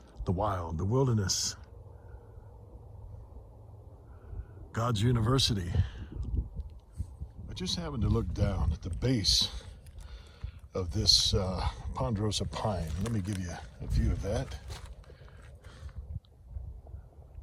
the wild, the wilderness, God's university. I just happened to look down at the base of this ponderosa pine. Let me give you a view of that.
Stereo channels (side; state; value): both; identical; correlation 1.00